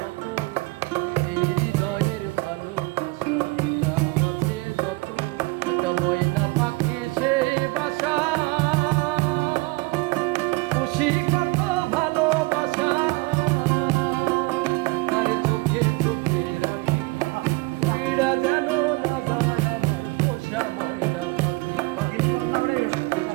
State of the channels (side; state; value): left; quieter; 24.8 dB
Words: এই হৃদয়ের ভালোবাসা দিলাম আছে যত। একটা ময়না পাখি সেই বাসা, খুশি কত ভালোবাসা, তার চোখে চোখে রাখি, উইড়া যেন না যায় আমার পোষা ময়না পাখি।